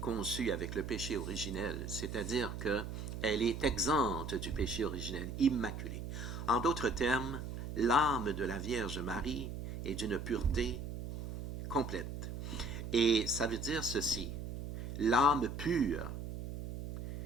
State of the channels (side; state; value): right; noise; hum, 6 dB below the sound